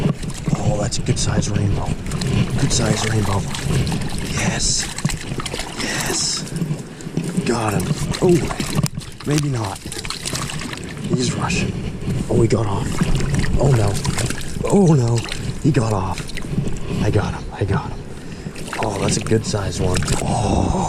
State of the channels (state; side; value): identical; both; correlation 1.00